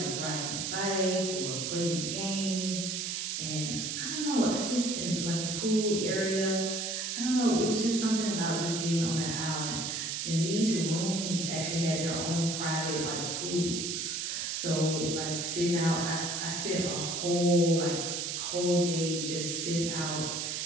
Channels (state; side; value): noise; right; hiss, 2 dB below the sound